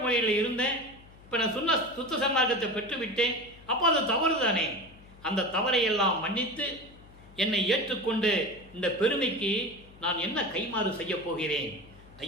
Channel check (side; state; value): left; noise; hum, 23 dB below the sound